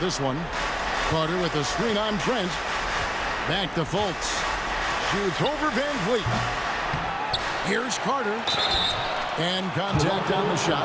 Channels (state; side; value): identical; both; correlation 1.00